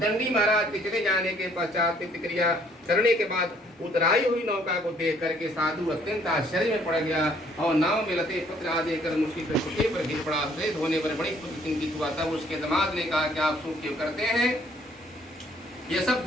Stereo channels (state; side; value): normal; both; correlation 0.62